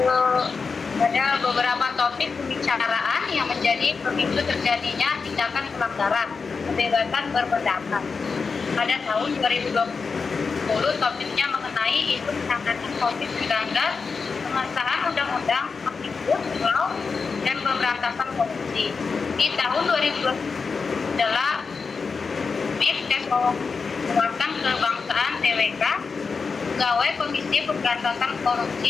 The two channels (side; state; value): right; quieter; 4.9 dB